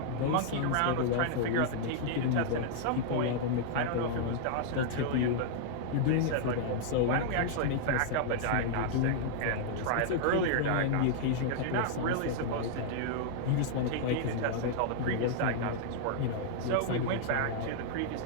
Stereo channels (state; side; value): different; both; correlation -0.01